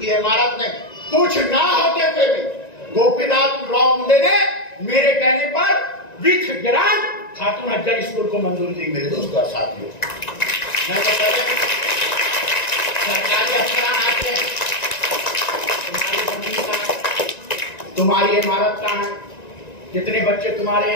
की इमारत नहीं, कुछ ना होते हुए भी गोपीनाथ राव मुंडे ने मेरे कहने पर with grant Khatoon Afzal school को मंजूरी दी। मेरे दोस्तों और साथियों, मैं तो पहले सरकारी अफसरान आते हैं, तुम्हारी जमीन कहाँ है, तुम्हारी इमारत कहाँ है, जितने बच्चे तुम्हारे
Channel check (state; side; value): late; right; 1.9 ms